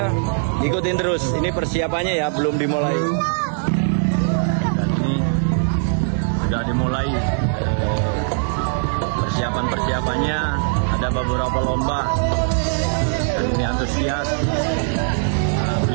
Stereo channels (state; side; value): silent; left; digital silence